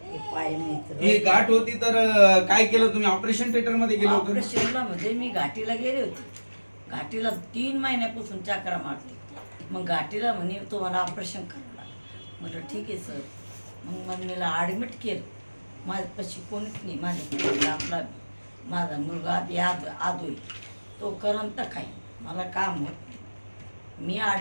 हे पाय मित्र ही गाठ होती तर काय केलं तुम्ही? ऑपरेशन थिएटर मध्ये गेलो होतो? ऑपरेशनला म्हणजे मी घाटीला गेले होते. घाटीला 3 महिन्यापासून चक्रा मारते. मग घाटीला म्हणे तुम्हाला ऑपरेशन करावं लागलं. म्हटलं ठीक आहे सर. मग मम्मीला ॲडमिट केलं. माझ्यापाशी कोणीच नाही. माझ्या आपला माझा मुलगा आदोय तो करंत काय मला काम होत नाही. मी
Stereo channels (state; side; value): inverted; both; correlation -1.00